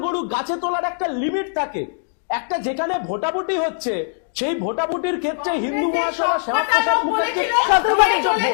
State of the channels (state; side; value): silent; right; digital silence